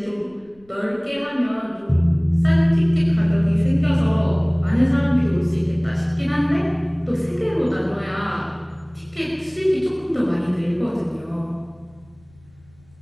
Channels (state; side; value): noise; left; rumble, 30 dB below the sound